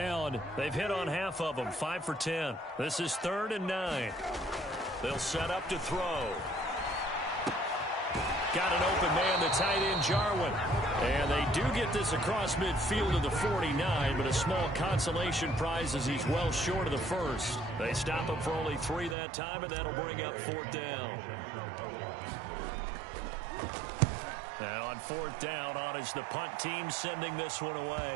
They've hit on half of them, 5 for 10. This is 3rd and 9. They'll set up to throw. Got an open man, the tight end, Jarwin. And they do get this across midfield to the 49, but a small consolation prize as he's well short of the 1st. They stop him for only 3 that time, and that'll bring up 4th down. And on 4th down, on is the punt team sending this one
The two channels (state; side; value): drops out; left; at 19.2 s